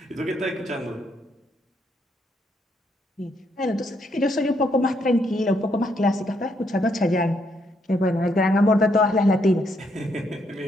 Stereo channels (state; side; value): normal; both; correlation 0.74